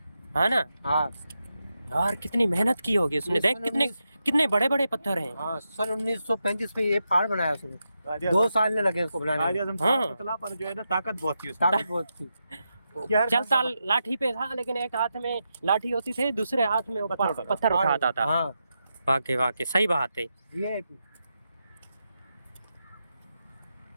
है ना। हाँ यार कितनी मेहनत की होगी उसने, ये देख सन कितने 19 कितने बड़े बड़े पत्थर हैं। हाँ सन 1935 में ये पहाड़ बनाया उसने। कायदे 2 आजम साल ने लगे उसको बनाने कायदे में। आजम हाँ। था पतला, पर जो है ना ताकत बहुत थी उसमें। ताकत बहुत थी। ये हर चलता खान का लाठी पे था, लेकिन एक हाथ में लाठी होती थी, दूसरे हाथ में पत्थर ऊपर उठाता पत्थर उठाता था। हाँ वाकई वाकई सही बात है। ये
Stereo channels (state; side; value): inverted; both; correlation -0.87